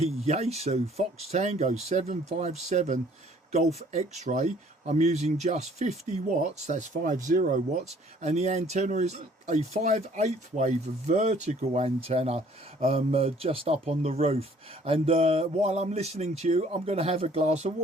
Fox Tango 757 Golf X-Ray. I'm using just 50 watts, that's 50 watts, and the antenna is a 5/8 wave vertical antenna just up on the roof. And while I'm listening to you, I'm going to have a glass of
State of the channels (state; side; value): normal; both; correlation 0.58